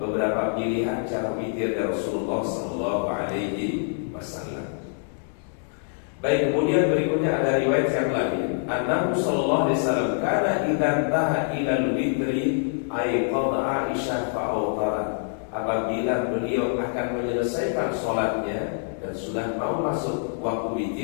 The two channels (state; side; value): silent; right; digital silence